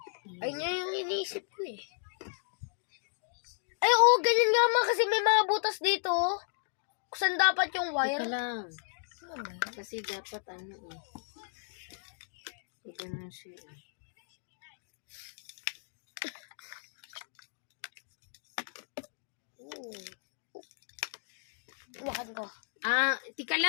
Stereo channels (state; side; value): silent; right; digital silence